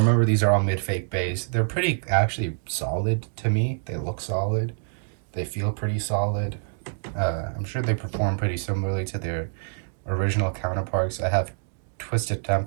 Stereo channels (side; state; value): left; silent; digital silence